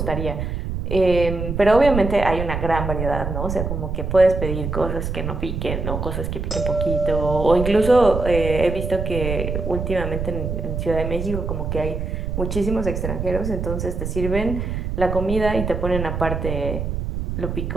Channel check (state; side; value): noise; right; rumble, 3 dB below the sound